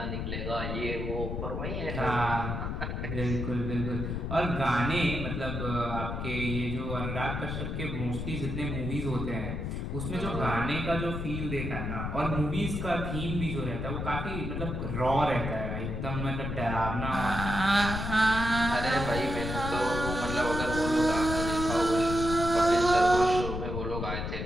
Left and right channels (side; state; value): left; noise; rumble, 3 dB below the sound